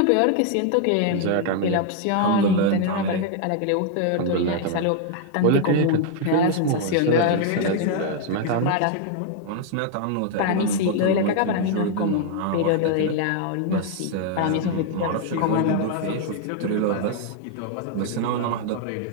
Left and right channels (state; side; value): different; both; correlation 0.00